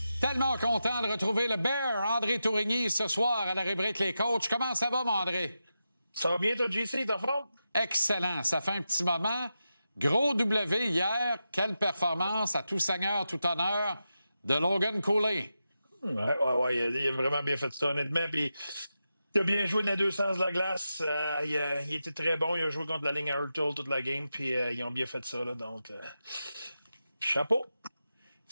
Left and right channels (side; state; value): both; inverted; correlation -0.90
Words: Tellement content de retrouver le Bear, André Tourigny, ce soir à la rubrique Les Coachs. Comment ça va, mon André? Ça va bien, toi, JC, t'es en forme? Excellent. Ça fait un petit moment. Gros W hier. Quelle performance à tout seigneur, tout honneur de Logan Cooley. Ouais, il a vraiment bien fait ça, honnêtement. Puis, il a bien joué dans les deux sens de la glace. Il était très bon. Il a joué contre la ligne à Hurtle toute la game. Puis, ils ont bien fait ça, là. Donc, chapeau.